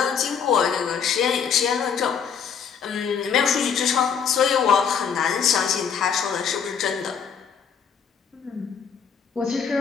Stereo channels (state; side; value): quieter; right; 7.1 dB